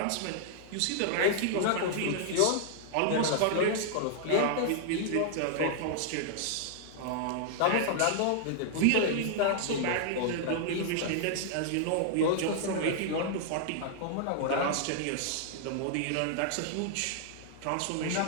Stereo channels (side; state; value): both; different; correlation -0.01